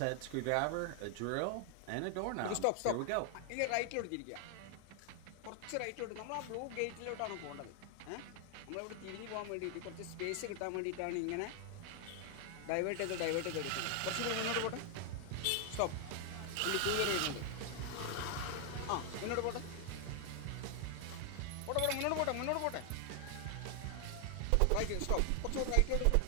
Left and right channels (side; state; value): both; different; correlation 0.00